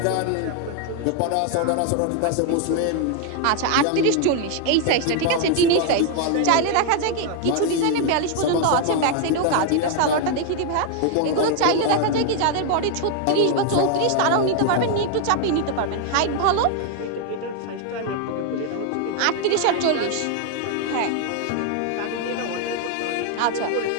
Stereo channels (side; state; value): both; different; correlation 0.00